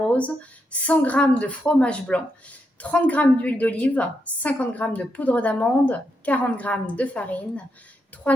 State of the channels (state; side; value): normal; both; correlation 0.82